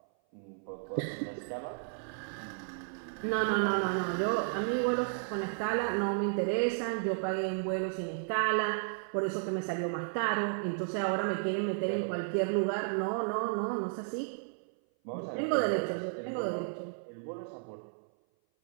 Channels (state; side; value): silent; left; 56 dB below the other